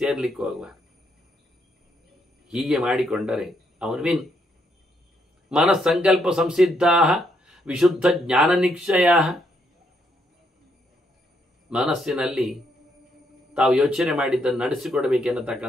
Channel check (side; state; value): both; normal; correlation 0.75